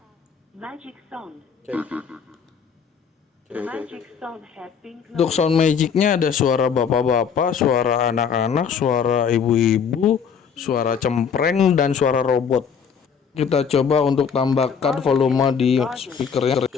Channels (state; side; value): quieter; right; 6.8 dB